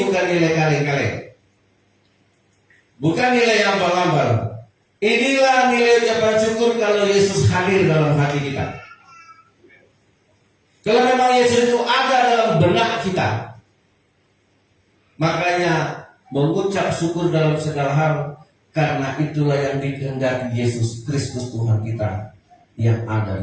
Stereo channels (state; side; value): identical; both; correlation 1.00